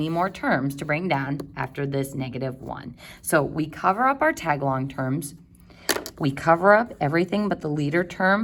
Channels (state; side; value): identical; both; correlation 1.00